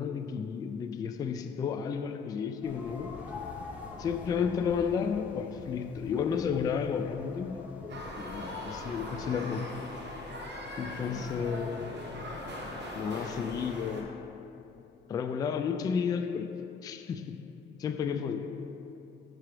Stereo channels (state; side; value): quieter; right; 5.9 dB